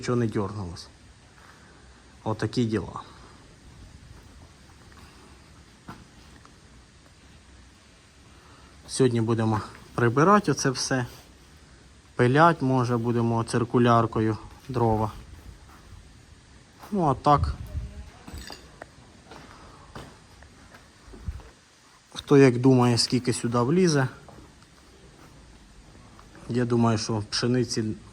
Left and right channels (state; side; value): identical; both; correlation 1.00